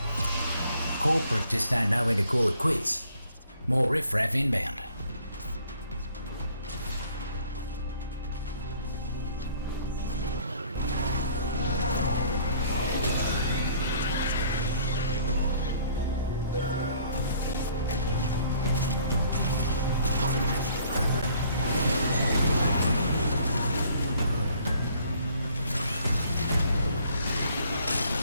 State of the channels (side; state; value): both; inverted; correlation -0.59